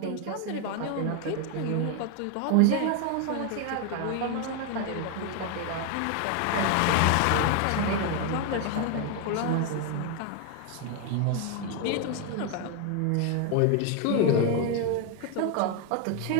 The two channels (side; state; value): both; different; correlation 0.01